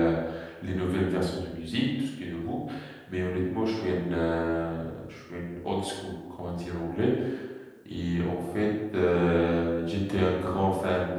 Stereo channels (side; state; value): both; identical; correlation 1.00